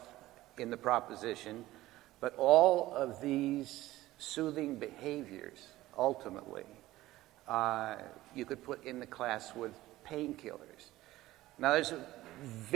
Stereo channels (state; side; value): quieter; left; 16.6 dB